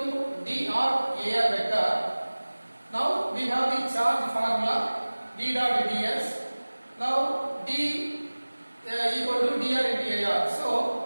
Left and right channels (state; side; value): inverted; both; correlation -1.00